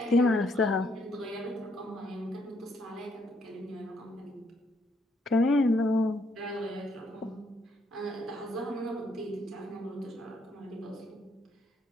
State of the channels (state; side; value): normal; both; correlation 0.71